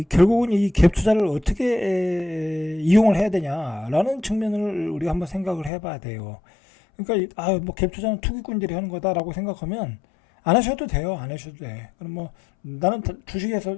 이 갭 투자를 어떻게 이용을 해야 되냐라는 측면을 우리가 한번 생각을 해봐야 돼요. 그러니까 뭐 갭 투자는 투기꾼들이 하는 거다라고 생각하면 안 하셔도 돼요. 안 하셔도 돼. 그럼 뭐 나는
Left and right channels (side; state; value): right; drops out; at 5.7 s